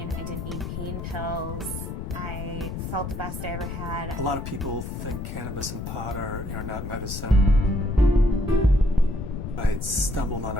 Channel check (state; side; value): noise; left; rumble, 6 dB below the sound